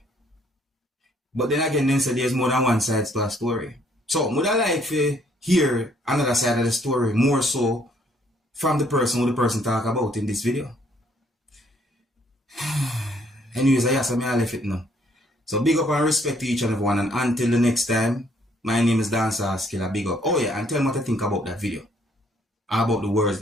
But then again, then say there's more than one side to a story. So, would I like to hear another side of the story, more so from the person who the person talk about in this video? Anyways, I ask me I left it now. So, big up and respect to each and everyone. And until the next time, my name is Dancehall Skilla. Big up. Oh yeah, and tell me what to think about that video. About the words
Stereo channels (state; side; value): normal; both; correlation 0.66